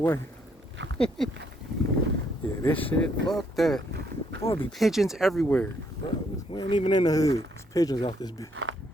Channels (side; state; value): both; normal; correlation 0.71